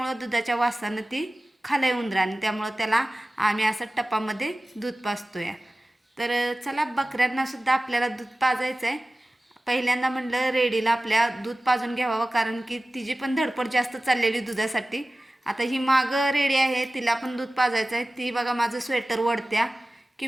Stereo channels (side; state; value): both; normal; correlation 0.96